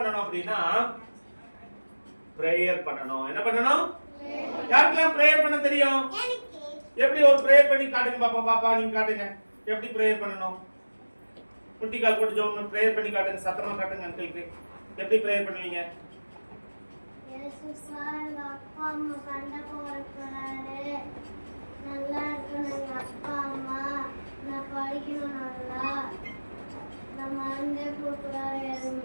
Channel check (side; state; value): both; inverted; correlation -1.00